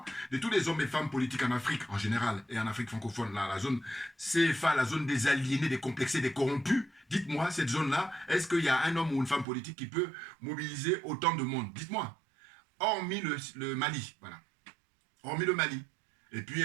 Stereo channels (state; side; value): drops out; left; at 9.5 s